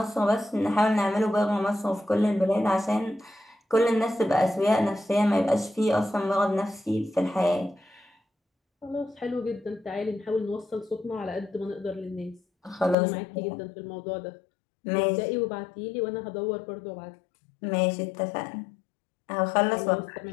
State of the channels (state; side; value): drops out; right; at 13.0 s